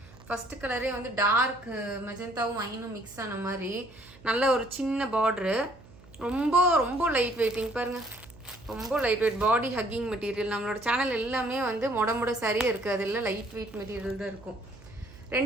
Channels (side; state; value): right; noise; hum, 23 dB below the sound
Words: ஃபஸ்ட்டு கலரே வந்து டார்க் மெஜந்தாவும் ஐனும் மிக்ஸ் ஆன மாதிரி நல்ல ஒரு சின்ன பார்ட்ரு. ரொம்ப ரொம்ப லைட் வெயிட்டிங் பாருங்கள், ரொம்ப light weight body hugging material. நம்மளோட சேனல் எல்லாமே வந்து மொட சாரியே இருக்குது, அது எல்லாம் லைட் வெயிட் மெட்டீரியல் தான் இருக்கும்.